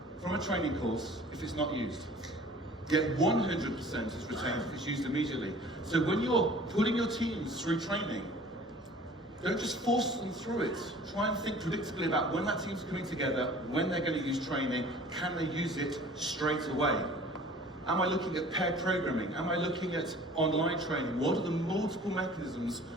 from a training course if it's not used. Yet 100% is retained if it's used immediately. So when you're putting your teams through training, don't just force them through it. Try and think predictably about when that team's coming together, when they're going to use training, can they use it straight away? Am I looking at pair programming? Am I looking at online training? What are the multiple mechanisms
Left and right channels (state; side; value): normal; both; correlation 0.48